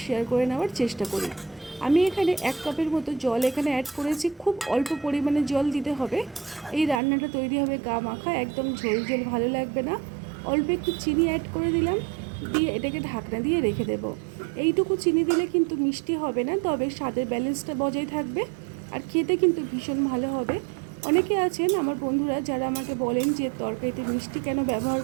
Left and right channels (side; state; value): left; drops out; at 7.0 s